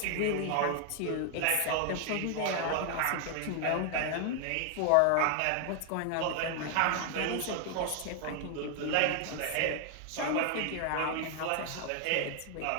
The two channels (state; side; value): different; both; correlation 0.00